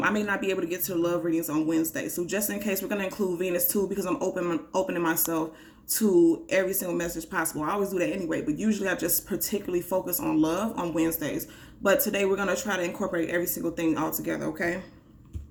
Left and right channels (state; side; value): identical; both; correlation 1.00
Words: may not be able to get to the love readings on Wednesday. So just in case, we're going to include Venus too because I'm opening myself to every single message possible. I always do that anyway, but usually I just particularly focus on love on Wednesdays. But today we're going to try to incorporate every single thing all together, okay?